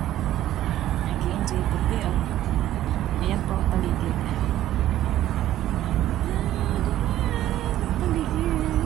Nag-i-enjoy po. Ayan po ang paligid.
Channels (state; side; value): quieter; left; 13.2 dB